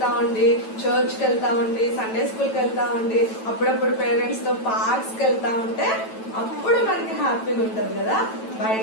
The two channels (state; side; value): late; right; 9.1 ms